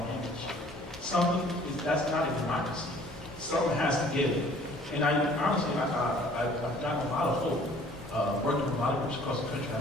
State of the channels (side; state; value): both; normal; correlation 0.54